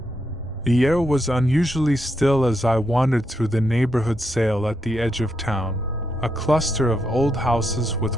The air was unusually still as I wandered through the neighborhood sale at the edge of town, a cluster of old houses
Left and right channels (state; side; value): normal; both; correlation 0.81